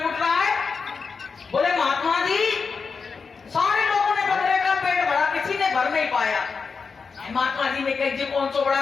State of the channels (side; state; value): right; quieter; 5.2 dB